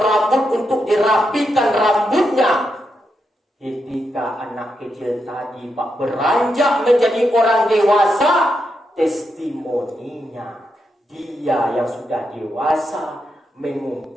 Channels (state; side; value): normal; both; correlation 0.84